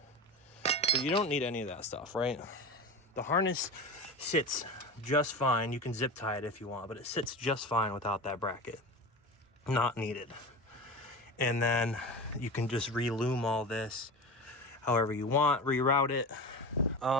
But you don't need any of that stuff, right? The harness sits just fine. You can zip tie it if you want, but it sits just fine without that bracket. Not needed. And then you can just re-lume all this however you want, reroute it.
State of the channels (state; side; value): normal; both; correlation 0.28